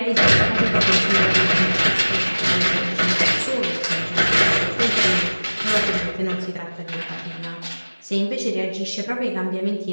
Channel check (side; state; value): both; inverted; correlation -1.00